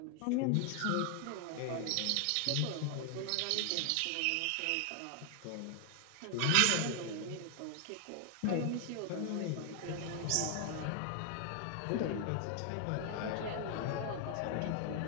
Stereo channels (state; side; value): different; both; correlation 0.00